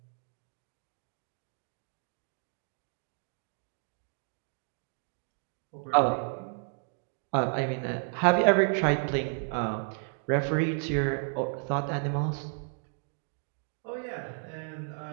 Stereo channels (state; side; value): silent; left; 56 dB below the other